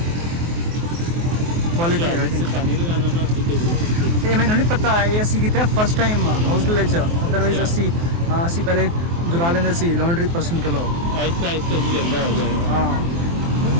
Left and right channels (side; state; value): left; late; 24 ms